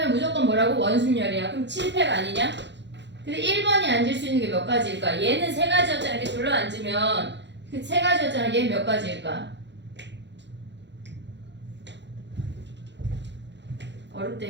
무조건 뭐라고? 원순열이야. 그럼 7팩 아니냐? 근데 1번이 앉을 수 있는 게 몇 가지일까? 얘는 세 가지였잖아. 이렇게 둘러 앉으면 그 세 가지였잖아. 얘는 몇 가지일까?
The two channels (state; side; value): late; left; 0.52 ms